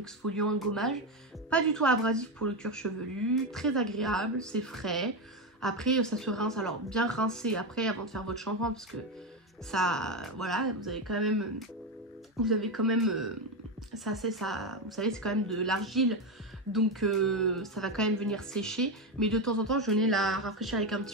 un gommage. Pas du tout abrasif pour le cuir chevelu, très agréable, c'est frais. Après, ça se rince, alors bien rincé après avant de faire votre shampoing parce que ça, voilà, vous avez quand même, ça, vous savez, c'est quand même de l'argile. Donc ça va quand même venir sécher. Mais de temps en temps, je venais la rafraîchir avec un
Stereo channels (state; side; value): normal; both; correlation 0.12